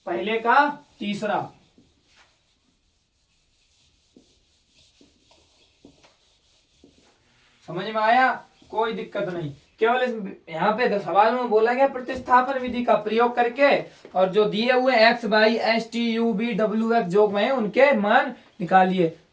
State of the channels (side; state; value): both; identical; correlation 1.00